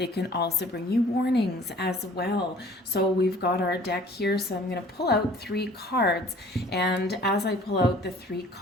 can also bring you warnings as well. So we've got our deck here, so I'm going to pull out 3 cards, and as I pull out the 3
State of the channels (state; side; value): normal; both; correlation 0.51